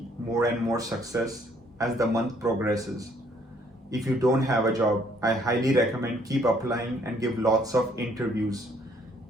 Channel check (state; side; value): normal; both; correlation 0.64